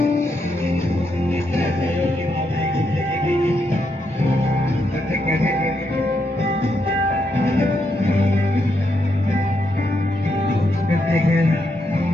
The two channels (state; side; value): normal; both; correlation 0.80